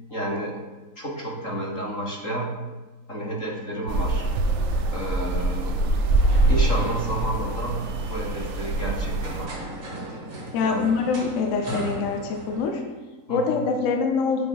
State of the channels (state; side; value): late; right; 3.8 ms